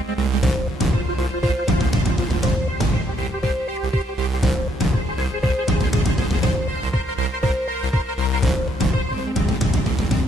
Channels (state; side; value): normal; both; correlation 0.72